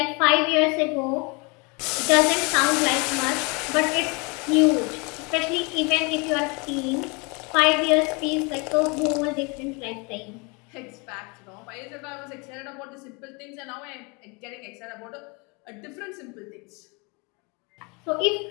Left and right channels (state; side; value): quieter; right; 30.1 dB